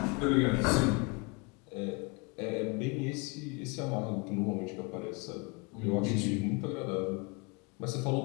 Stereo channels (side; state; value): right; quieter; 29.6 dB